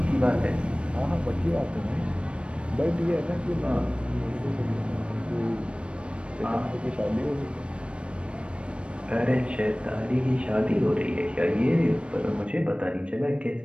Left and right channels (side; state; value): left; late; 0.059 ms